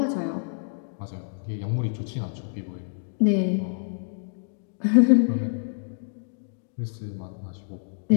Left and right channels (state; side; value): silent; right; digital silence